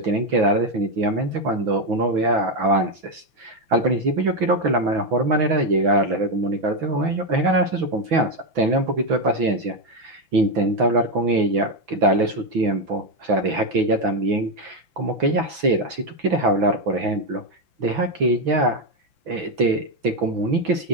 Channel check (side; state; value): left; late; 6.0 ms